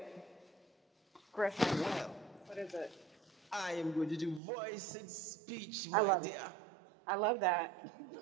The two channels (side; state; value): left; drops out; at 4.4 s